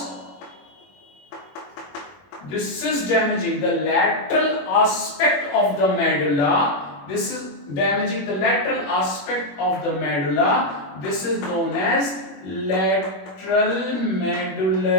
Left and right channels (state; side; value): late; right; 21 ms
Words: this is damaging the lateral aspect of the medulla. This is damaging the lateral aspect of the medulla. This is known as lateral